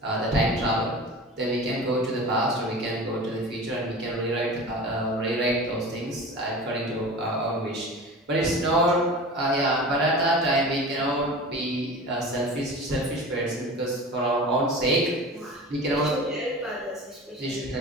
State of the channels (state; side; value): normal; both; correlation 0.35